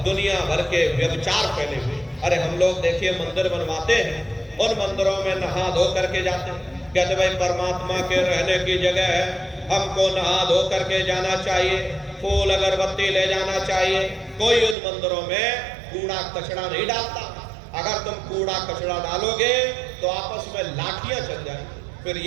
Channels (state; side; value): drops out; left; at 14.8 s